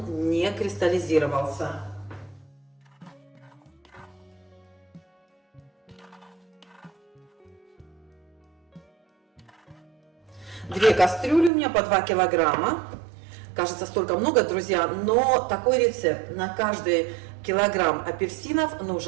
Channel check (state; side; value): drops out; left; at 11.5 s